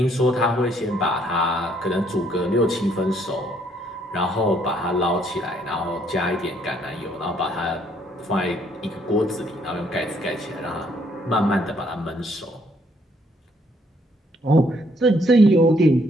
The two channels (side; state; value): both; normal; correlation 0.67